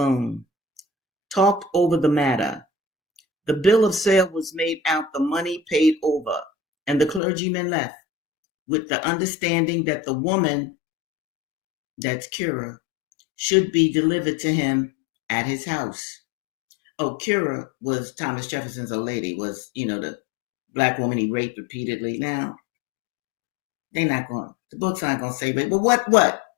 talked over the matter. The bill of sale was made out, the money paid over, and the clergyman left with the understanding that the woman, that's Currer, should be delivered to him at his house. Oh, Cura was Thomas Jefferson's old lady, was, the black woman he raped repeatedly. Now, the books aren't going to say rape, but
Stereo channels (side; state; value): right; drops out; at 7.2 s